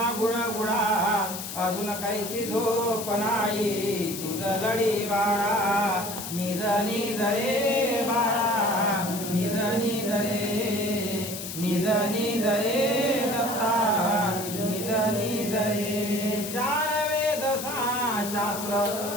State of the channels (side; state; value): left; noise; hiss, 8 dB below the sound